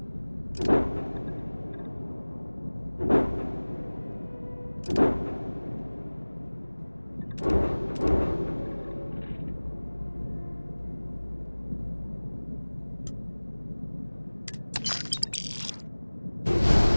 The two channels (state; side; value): inverted; both; correlation -1.00